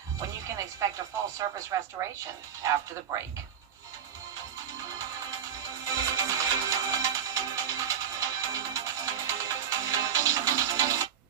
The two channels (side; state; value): left; quieter; 8.4 dB